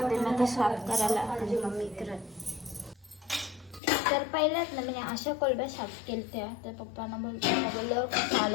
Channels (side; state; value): right; drops out; at 3.8 s